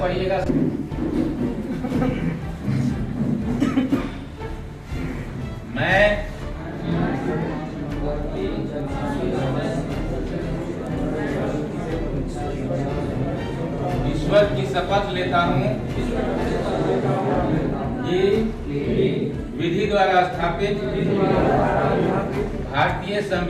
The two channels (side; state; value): both; identical; correlation 1.00